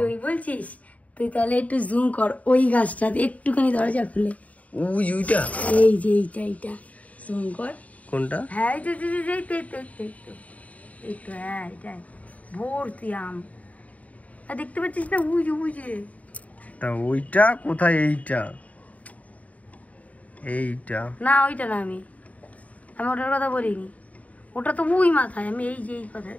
তুই বলছিস? তুই তাহলে একটু জুম কর ওই গাছটাতে, একটুখানি দরজা খুলে। ওইটা, এই যে এইটা জুম কর। কোনটা? হ্যাঁ, এই তো, হ্যাঁ এটাই ভর্তি আম। আর দেখতে পাচ্ছিস না, বুঝে তা ওইটা কোথায়? এইটা না, ওইটা না, আমি ওটার কথা বলিনি, ওটা তো ওই মাথায়। আমি এই যে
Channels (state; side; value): late; right; 0.070 ms